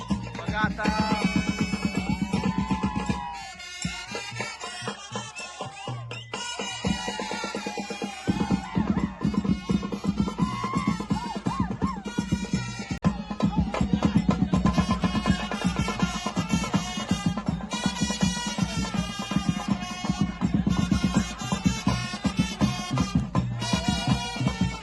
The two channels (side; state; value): both; identical; correlation 1.00